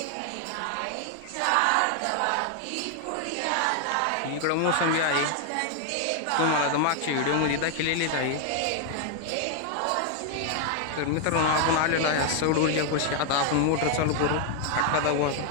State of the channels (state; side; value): different; both; correlation 0.00